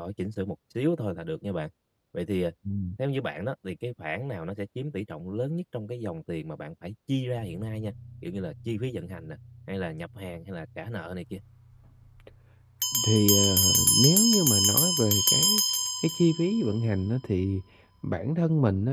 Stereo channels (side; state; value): both; identical; correlation 1.00